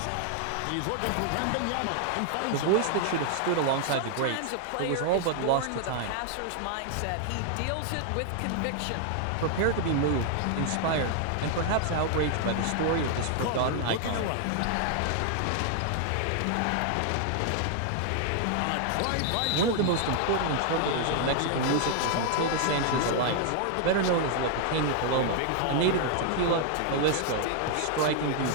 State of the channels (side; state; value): both; different; correlation 0.00